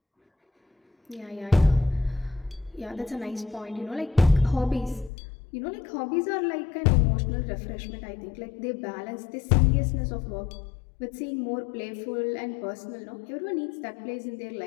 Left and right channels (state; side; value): drops out; right; at 5.1 s